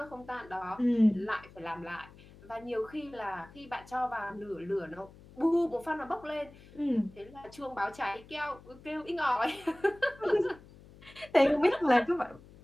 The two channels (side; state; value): left; noise; hum, 22 dB below the sound